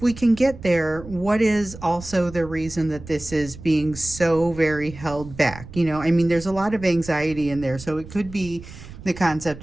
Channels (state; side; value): noise; right; rumble, 15 dB below the sound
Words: can get there, what is also the reason that this is being so very held back? There's a lot of anxiety in there, so it could be the concept